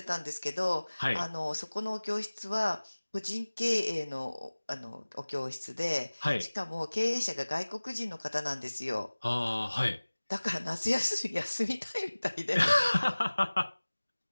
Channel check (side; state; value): both; inverted; correlation -1.00